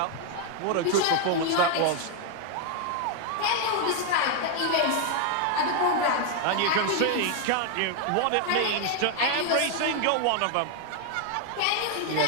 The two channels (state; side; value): different; both; correlation 0.00